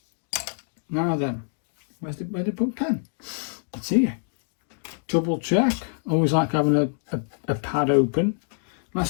Now then, where did I put pen? It's here. Double check. Always like having a pad open.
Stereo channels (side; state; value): right; silent; digital silence